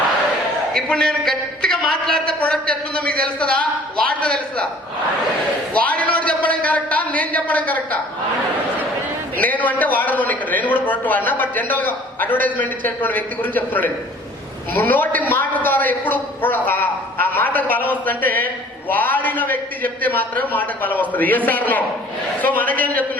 ఇప్పుడు నేను గట్టిగా మాట్లాడితే ప్రొడక్ట్ ఎట్లుందో మీకు తెలుస్తుందా? వాడితే తెలుస్తుందా? వాడినోడు చెప్పడం కరెక్టా, నేను చెప్పడం కరెక్టా? నేను అంటే వాడను. ఇక్కడ నేను కూడా ప్రొడక్ట్ వాడినా, బట్ జనరల్ గా అడ్వర్టైజ్మెంట్ ఇచ్చేటువంటి వ్యక్తి గురించి చెప్తున్నాడు. నోటి మాట ద్వారా ఎప్పుడు ఆ మాటకు బలం వస్తుందంటే వాడిన వ్యక్తి చెప్తే మాత్రమే మాటకు బలం వస్తుంది. Yes sir no? సో మనకేం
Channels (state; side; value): normal; both; correlation 0.51